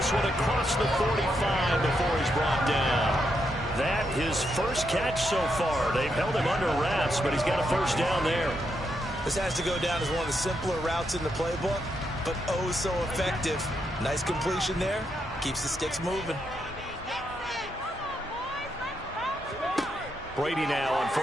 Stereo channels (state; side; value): normal; both; correlation 0.81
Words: one across the 45 before he's brought down. That his first catch so far. They've held him under wraps, but he's got a first down there. This has to go down as one of the simpler routes in the playbook, but oh so effective. Nice completion there. Keeps the sticks moving. Brady now on